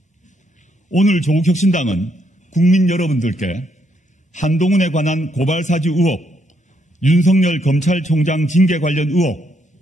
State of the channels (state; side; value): normal; both; correlation 0.74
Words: 오늘 조국혁신당은 국민 여러분들께 한동훈에 관한 고발사주 의혹, 윤석열 검찰총장 징계 관련 의혹,